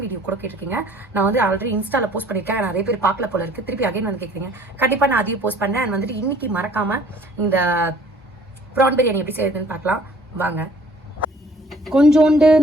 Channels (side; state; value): both; normal; correlation 0.55